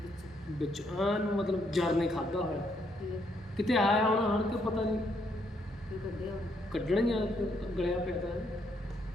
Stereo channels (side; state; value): both; normal; correlation 0.73